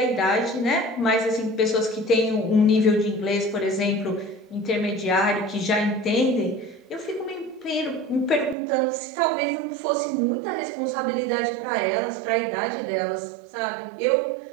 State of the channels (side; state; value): left; drops out; at 8.6 s